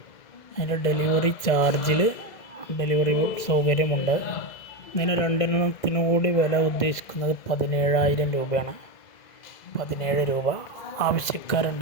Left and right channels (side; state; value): right; late; 2.0 ms